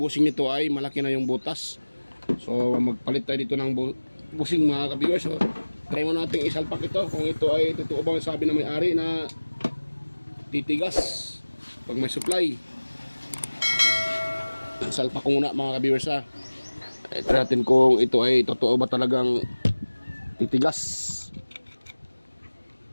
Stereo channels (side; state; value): both; inverted; correlation -1.00